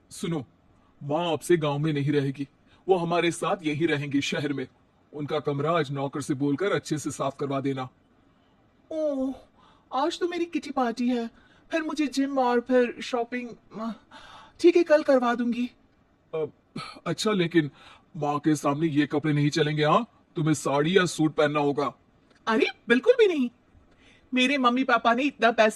सुनो। माँ आपसे गांव में नहीं रहेगी। वो हमारे साथ यही रहेंगी शहर में। उनका कमरा आज नौकर से बोलकर अच्छे से साफ करवा देना। ओह, आज तो मेरी किटी पार्टी है, फिर मुझे जिम और फिर शॉपिंग। ठीक है, कल करवा दूंगी। अ, अच्छा, लेकिन माँ के सामने ये कपड़े नहीं चलेंगे। हाँ, तुम्हें साड़ी या सूट पहनना होगा। अरे बिल्कुल भी नहीं। मेरे मम्मी पापा ने इतना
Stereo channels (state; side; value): identical; both; correlation 1.00